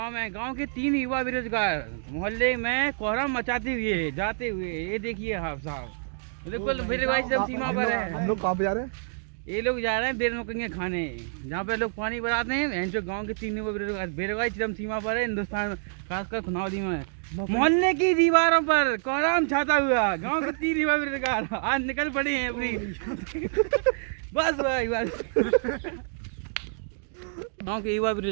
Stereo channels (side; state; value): left; silent; digital silence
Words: में गांव के 3 युवा बेरोजगार मोहल्ले में कोहराम मचाते हुए जाते हुए, ये देखिए आप साहब, बिल्कुल बेरोजगारी सब सीमा पर है। हम लोग कहाँ पे जा रहे हैं? ये लोग जा रहे हैं बेरोजगारी खाने, जहाँ पे लोग पानी भराते हैं। जो गांव के 3 युवा बेरोजगारी चरम सीमा पर है हिंदुस्तान, खासकर खुनावदी में। मोहल्ले की दीवारों पर कोहराम छाता हुआ गांव के 3 युवा बेरोजगार आज निकल पड़े हैं अपनी बस भाई बस। गांव के युवा